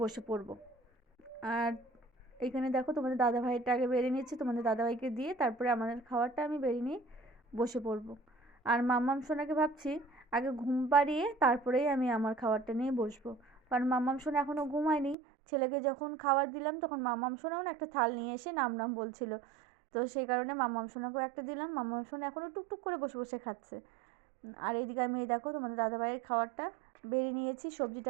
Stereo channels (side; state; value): left; drops out; at 15.2 s